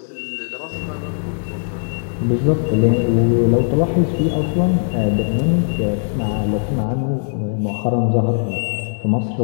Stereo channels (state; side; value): silent; right; 61 dB below the other